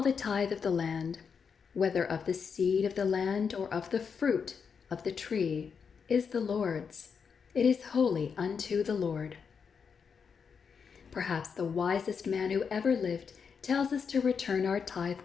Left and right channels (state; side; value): quieter; right; 6.2 dB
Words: tithe of the land, whether of the seed of the land or of the fruit of the tree, is the Lord's. It is holy unto the Lord." Perhaps the wisest man who ever lived tells us to return our tithe